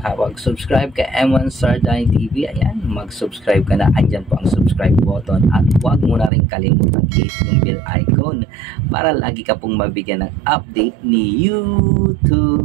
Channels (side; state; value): left; drops out; at 6.3 s